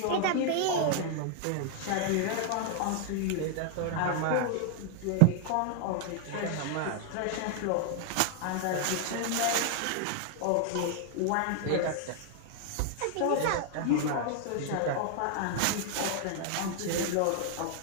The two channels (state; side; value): different; both; correlation 0.00